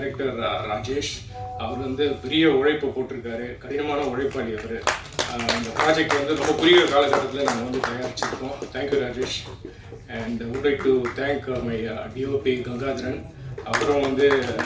Rajesh. அவர் வந்து பெரிய உழைப்பு போட்டிருக்காரு, கடினமான உழைப்பாளி அவர். இந்த ப்ராஜெக்ட் வந்து ரொம்ப குறுகிய காலகட்டத்தில் நாங்கள் வந்து தயாரிச்சிருக்கோம். Thank you Rajesh. And would like to thank my DOP Gangadharan. அப்புறம் வந்து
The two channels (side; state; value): both; identical; correlation 1.00